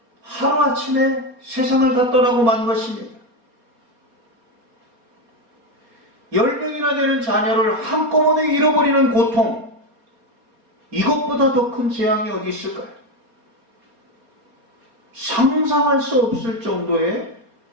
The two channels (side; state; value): left; late; 4.3 ms